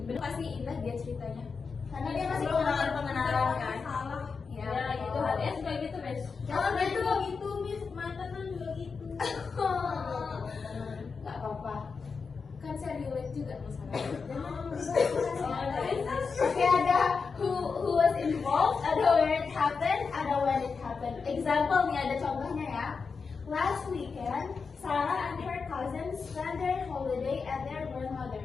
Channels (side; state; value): right; quieter; 5.1 dB